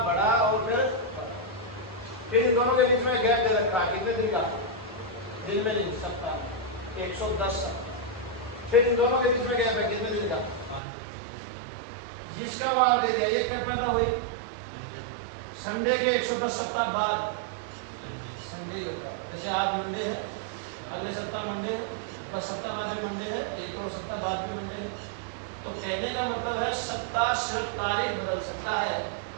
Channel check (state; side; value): drops out; left; at 10.8 s